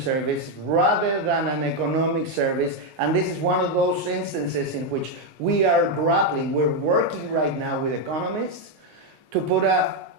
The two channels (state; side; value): late; left; 19 ms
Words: rather than an economic service. And this is one of those instances in which we are grappling. We're working right now with economists to put a